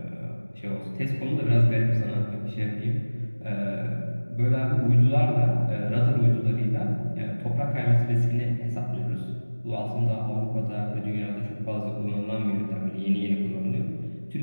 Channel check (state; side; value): inverted; both; correlation -1.00